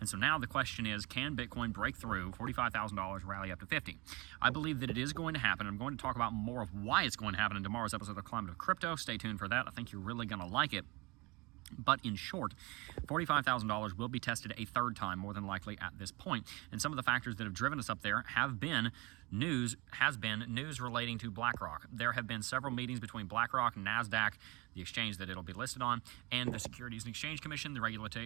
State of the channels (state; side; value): quieter; left; 25.1 dB